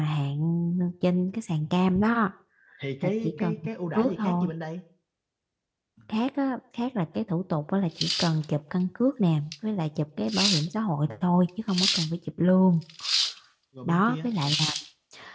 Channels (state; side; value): identical; both; correlation 1.00